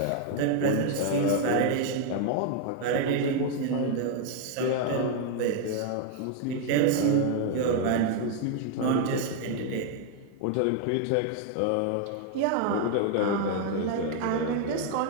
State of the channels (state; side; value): different; both; correlation 0.00